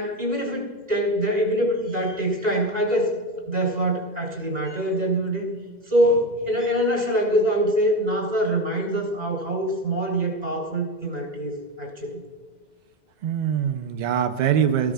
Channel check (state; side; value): late; left; 2.0 ms